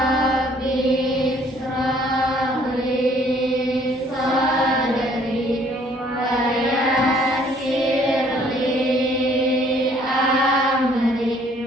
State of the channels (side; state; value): both; normal; correlation 0.60